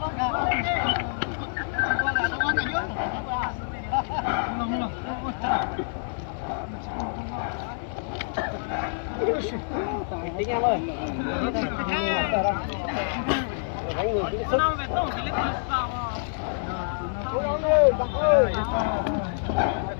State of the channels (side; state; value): right; silent; digital silence